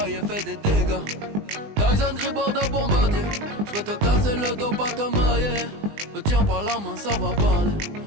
fait des dégâts. Tyson Gribord de bombardier. J'vais te casser le dos, pas te mailler. Me tiens par la main, ça va parler.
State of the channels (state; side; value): late; left; 20 ms